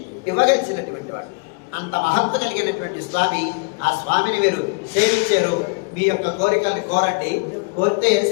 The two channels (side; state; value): right; quieter; 32.1 dB